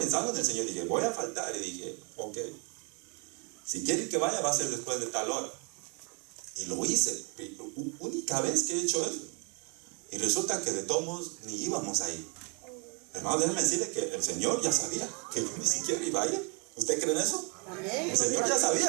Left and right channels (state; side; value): quieter; left; 34.5 dB